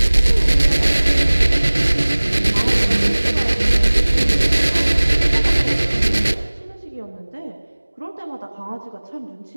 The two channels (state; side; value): inverted; both; correlation -1.00